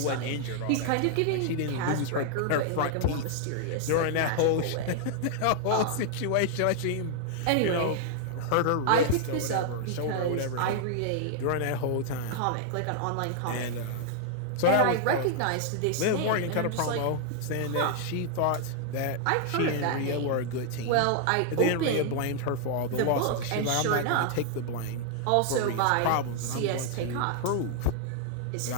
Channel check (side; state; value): both; different; correlation 0.00